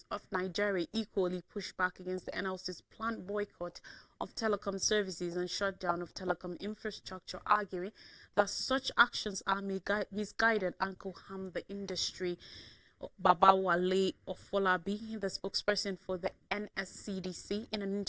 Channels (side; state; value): both; identical; correlation 1.00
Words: of Nigeria equally pushed back against the NLC's planned boycott of telecom services and shutdown of telecom infrastructure, arguing that such actions are misguided and could harm the industry. Babawale Ofolabi, the spokesperson for the NSCDC, in an